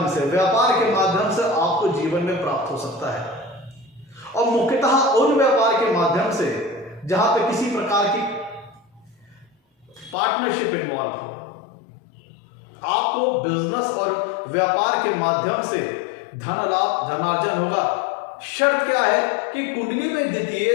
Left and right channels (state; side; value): drops out; right; at 10.2 s